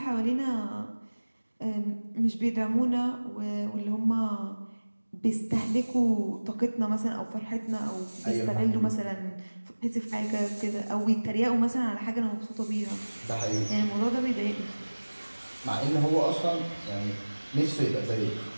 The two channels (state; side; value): inverted; both; correlation -1.00